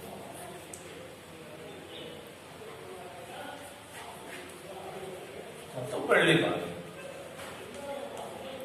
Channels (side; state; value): both; identical; correlation 1.00